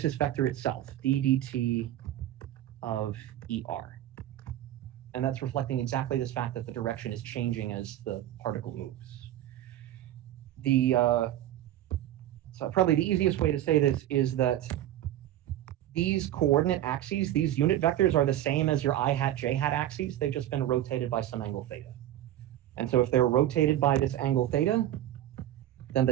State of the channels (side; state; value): left; quieter; 12.8 dB